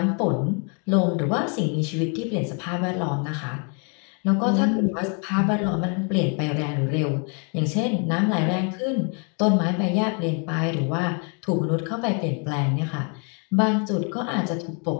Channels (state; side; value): quieter; right; 38.1 dB